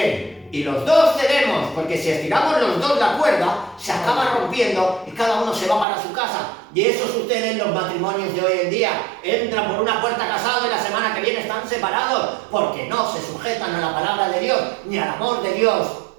Y los dos cedemos, porque si estiramos los dos la cuerda, se acaba rompiendo y cada uno se va para su casa. Y eso sucede en los matrimonios de hoy en día. Entran por una puerta casados y la semana que viene están separados, porque no se sujetan a la palabra de Dios, ni al amor de Dios.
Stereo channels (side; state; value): left; drops out; at 5.9 s